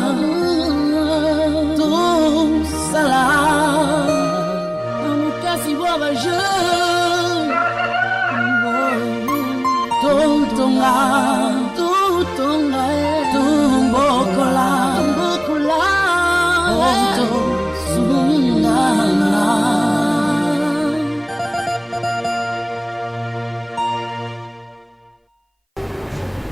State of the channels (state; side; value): identical; both; correlation 1.00